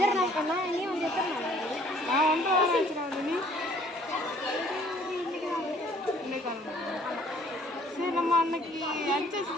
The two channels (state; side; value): normal; both; correlation 0.59